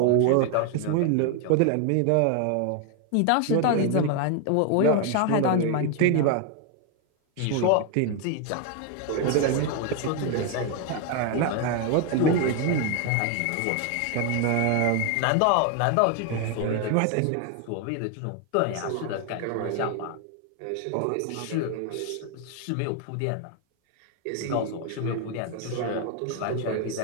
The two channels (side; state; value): both; different; correlation 0.01